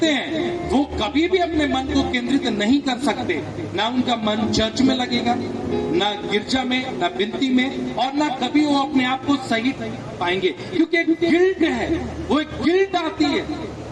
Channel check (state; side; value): identical; both; correlation 1.00